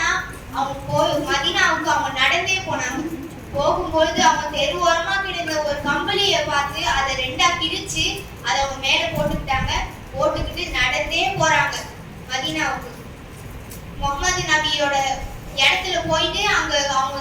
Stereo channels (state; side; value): identical; both; correlation 1.00